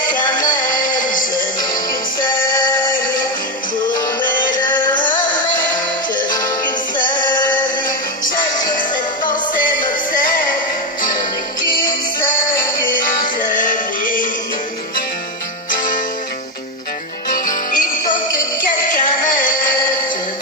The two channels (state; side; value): normal; both; correlation 0.09